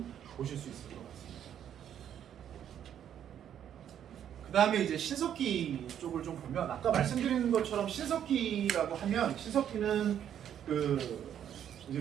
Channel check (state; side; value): quieter; left; 9.7 dB